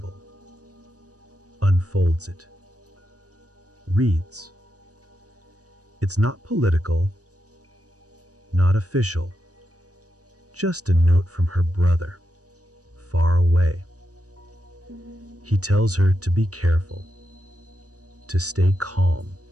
unfolds it, reads. It's not political, not official, just a note from her brother, far away. He tells her to be careful, to stay calm,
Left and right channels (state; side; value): late; left; 0.67 ms